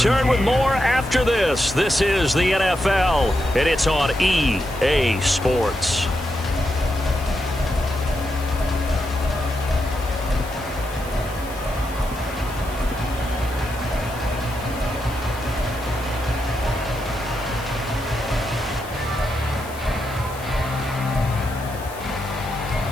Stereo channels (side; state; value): left; noise; hiss, 18 dB below the sound